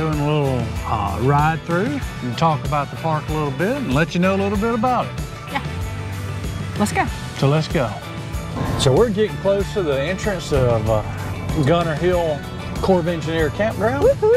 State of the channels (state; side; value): identical; both; correlation 1.00